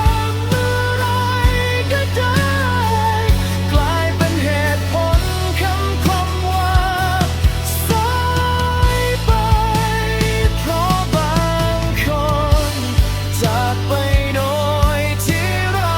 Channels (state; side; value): identical; both; correlation 1.00